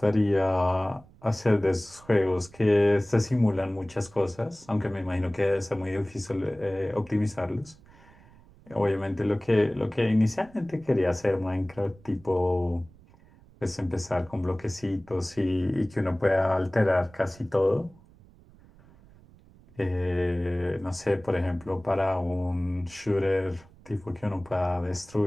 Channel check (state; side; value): noise; right; rumble, 25 dB below the sound